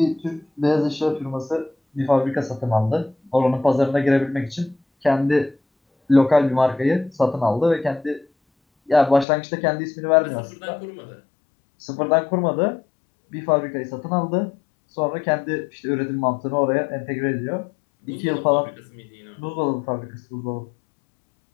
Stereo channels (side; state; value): right; drops out; at 9.2 s